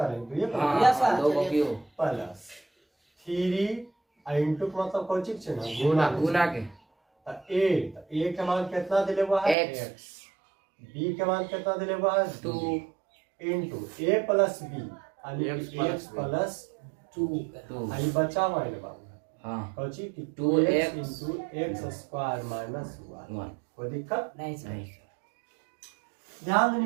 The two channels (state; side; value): drops out; left; at 9.6 s